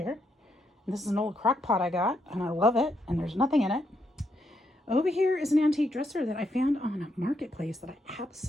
And this is an old crock pot I got, and I love it, and there's nothing in it. Over here is an antique dresser that I found on a marketplace that I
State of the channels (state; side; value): normal; both; correlation 0.78